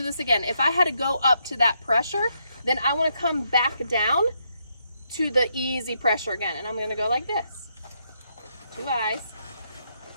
this again, if I had to go up to that pressure, then I want to come back down to the easy pressure again. And I'm going to go like this. 2 eyes.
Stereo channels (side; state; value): both; inverted; correlation -0.78